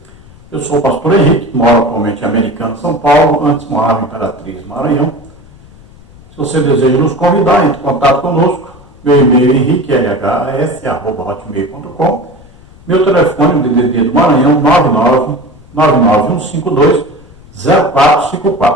Eu sou o pastor Henrique, moro atualmente em Americana, São Paulo, antes morava em Imperatriz, Maranhão. Se você deseja nos convidar, entre em contato conosco. Meu e-mail é henriquelhs@hotmail.com. Meu telefone, DDD do Maranhão,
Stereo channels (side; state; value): left; noise; rumble, 24 dB below the sound